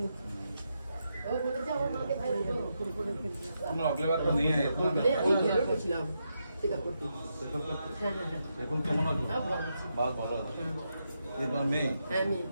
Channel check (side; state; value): both; inverted; correlation -0.83